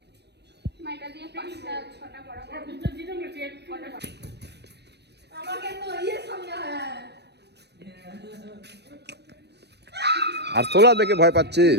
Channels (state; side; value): late; left; 0.49 ms